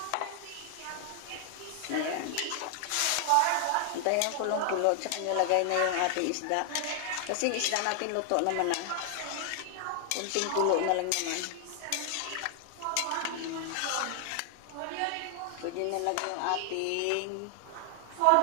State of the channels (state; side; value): different; both; correlation 0.00